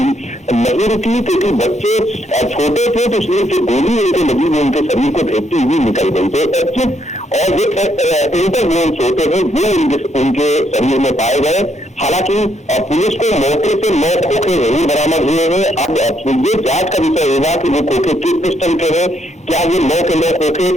नहीं रुकी, क्योंकि बच्चे छोटे थे तो इसलिए जो गोली उनको लगी वो उनके शरीर को भेजती हुई निकल गई। तो एग्जिट और जो इंटर वोन्स होते हैं वो उनके शरीर में पाए गए। हालांकि पुलिस को मौके से 9 खोखे जरूर बरामद हुए हैं। अब ये जांच का विषय होगा कि वो खोखे किस पिस्टल के हैं, क्या ये 9 के 9 खोखे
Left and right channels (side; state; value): both; normal; correlation 0.74